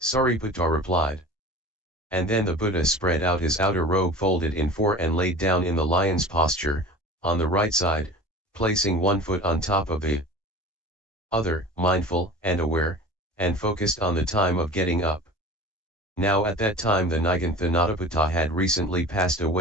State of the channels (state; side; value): normal; both; correlation 0.38